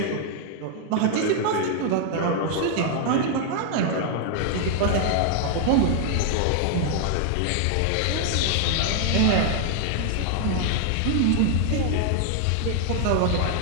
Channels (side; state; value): both; different; correlation 0.00